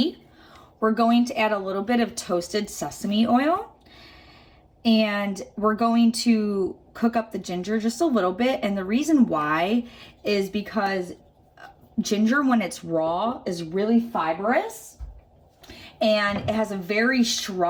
We're going to add a little bit of toasted sesame oil, and we're going to cook up the ginger just a little bit. And the reason why is because ginger, when it's raw, is really fibrous, and it has a very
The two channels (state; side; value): identical; both; correlation 1.00